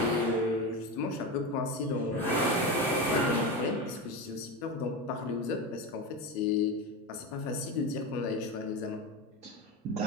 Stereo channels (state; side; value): normal; both; correlation 0.20